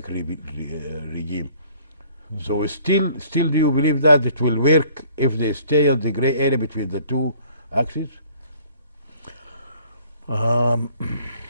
regime. So still do you believe that it will work if they stay in the gray area between the two axes?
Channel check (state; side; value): inverted; both; correlation -0.56